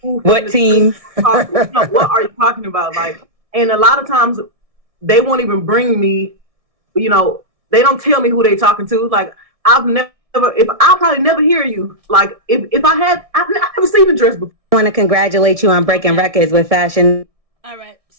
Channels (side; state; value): left; late; 1.6 ms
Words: who. What team? What are you talking about? Like, and a lot of times they won't even bring me, they don't tell me who they talking to. Like, I'll probably never hear you. Like, if I've never seen the dress before. I want to congratulate you on breaking records with fashion. All right.